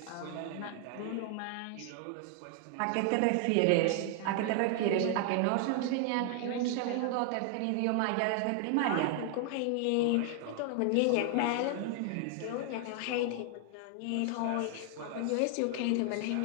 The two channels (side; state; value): both; different; correlation 0.00